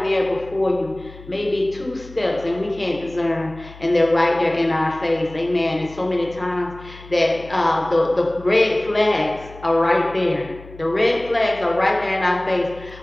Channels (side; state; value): left; noise; hum, 19 dB below the sound